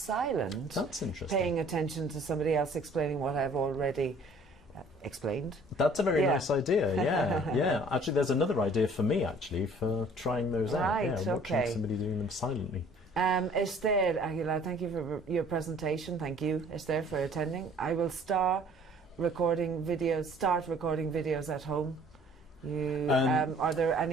That's interesting. Paying attention to somebody else explaining what I've already explained. That's a very nice idea. Yeah, yeah. Actually, there's another idea for me actually for trying those out. Right. Yeah, watching Okay. somebody doing them silently. Esther Aguilar, thank you for your presentation. Thank you, Esther, for attending. I will start recording videos at home. Are there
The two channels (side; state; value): both; normal; correlation 0.54